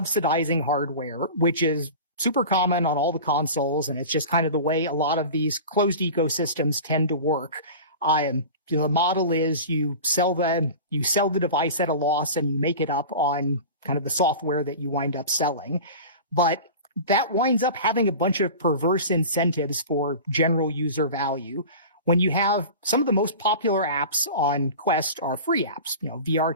hardware, which is super common on all the consoles, and it's just kind of the way a lot of these closed ecosystems tend to work. The model is you sell the device at a loss and you make it up on kind of the software that you wind up selling. But that winds up having a bunch of perverse incentives for general user value. When you have some of the most popular apps on Quest are free apps, VR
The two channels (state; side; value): inverted; both; correlation -0.34